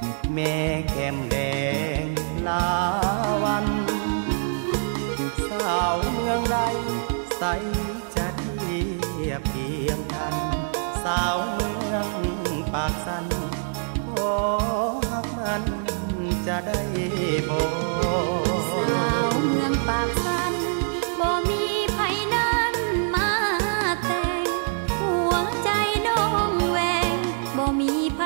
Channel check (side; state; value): left; silent; digital silence